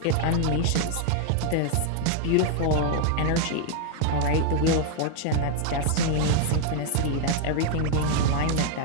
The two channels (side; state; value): both; different; correlation 0.00